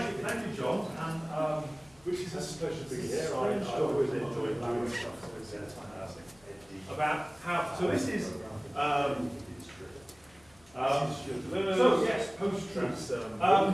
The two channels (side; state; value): left; noise; hum, 29 dB below the sound